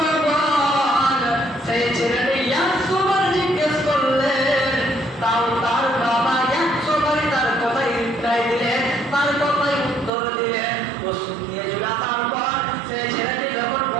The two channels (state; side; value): drops out; left; at 10.1 s